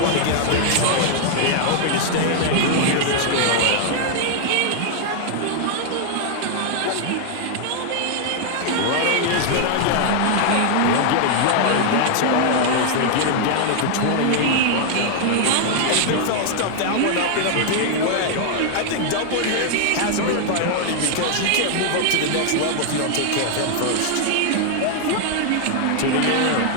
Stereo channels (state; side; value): different; both; correlation 0.00